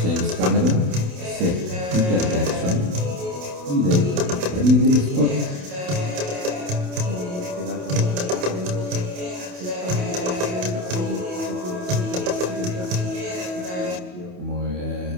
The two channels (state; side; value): late; left; 28 ms